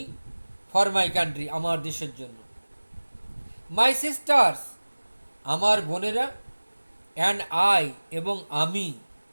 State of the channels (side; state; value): both; inverted; correlation -1.00